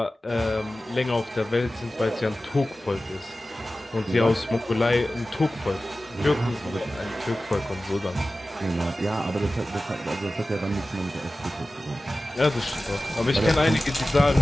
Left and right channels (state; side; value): normal; both; correlation 0.95